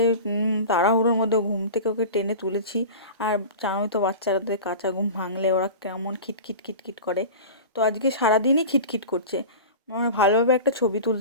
তাড়াহুড়োর মধ্যে ঘুম থেকে ওকে টেনে তুলেছি। আর জানোই তো বাচ্চাদের কাঁচা ঘুম ভাঙলে ওরা কেমন খিটখিট খিটখিট করে। তো আজকে সারাদিনই খিটখিট করছে, মানে ভালোভাবে একটা ছবি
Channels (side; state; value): both; inverted; correlation -0.33